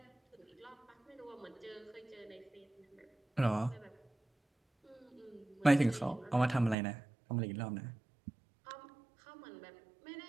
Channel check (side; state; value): left; drops out; at 6.8 s